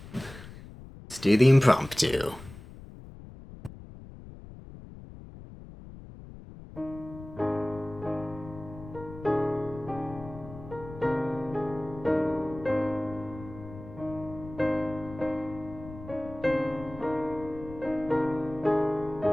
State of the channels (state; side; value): noise; left; rumble, 15 dB below the sound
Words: do the impromptu.